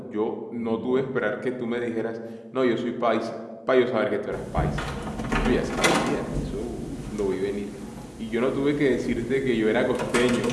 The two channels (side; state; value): both; identical; correlation 1.00